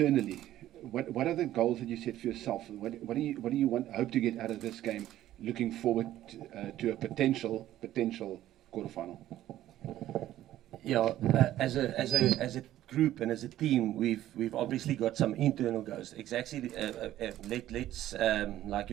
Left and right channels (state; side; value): quieter; left; 13.4 dB